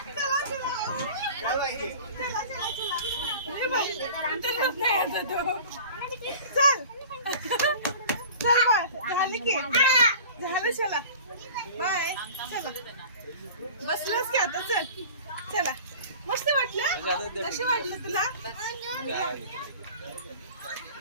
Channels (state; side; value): inverted; both; correlation -0.41